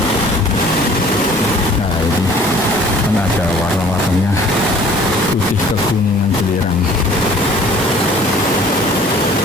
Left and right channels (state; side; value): normal; both; correlation 0.51